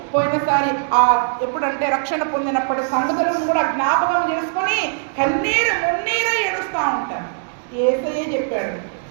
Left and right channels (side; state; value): left; silent; digital silence